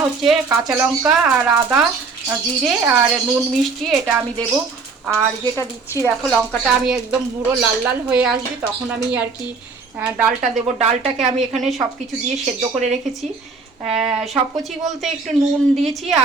হচ্ছে কাঁচা লঙ্কা আর আদা, জিরে আর নুন মিষ্টি, এটা আমি দেবো। আর যেটা দিচ্ছি দেখো, লঙ্কাটা আমি একদম পুরো লাল লাল হয়ে আসবে তখন আমি আর কি ডালটা দেবো। ডালটাকে আমি এখানে সব কিছু দিয়ে সেদ্ধ করে রেখেছি। সব কুচি বলতে একটু নুন দিয়েছি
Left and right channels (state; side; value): quieter; left; 4.5 dB